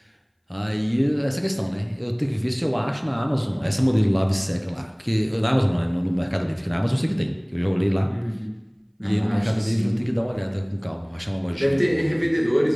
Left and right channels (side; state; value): both; identical; correlation 1.00